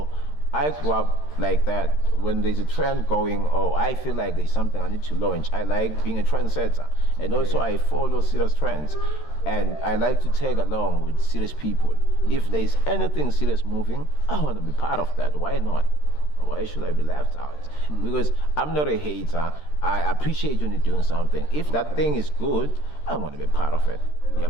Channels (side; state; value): right; late; 13 ms